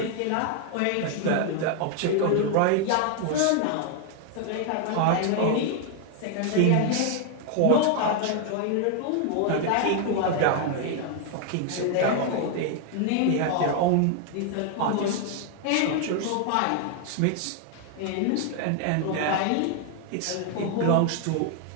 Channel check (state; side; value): different; both; correlation 0.00